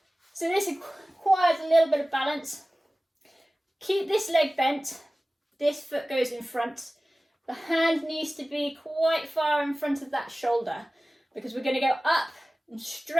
So this requires a little bit of balance. Keep this leg bent. This foot goes in front. The hand needs to be quite far in front of that shoulder because we're going to go up and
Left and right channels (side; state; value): both; normal; correlation 0.97